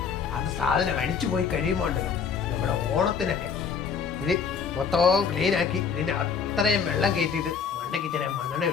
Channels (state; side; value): quieter; right; 6.3 dB